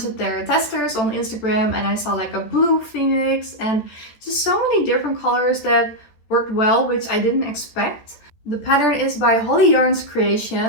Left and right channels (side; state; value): right; late; 14 ms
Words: of their testers on Instagram and I saw like a blue phoenix and just so many different colors that worked well, which I didn't expect. The pattern is by Holly Yarn's